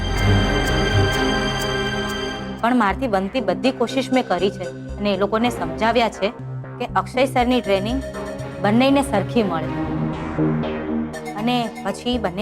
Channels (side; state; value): both; identical; correlation 1.00